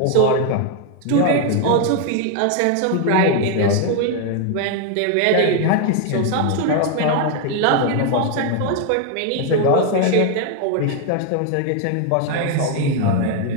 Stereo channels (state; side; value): different; both; correlation 0.00